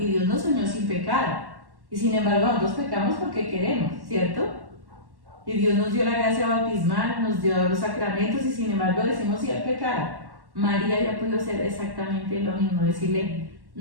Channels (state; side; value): late; left; 1.1 ms